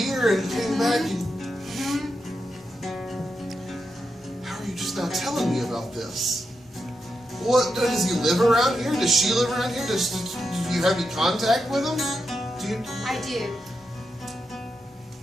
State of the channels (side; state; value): both; normal; correlation 0.86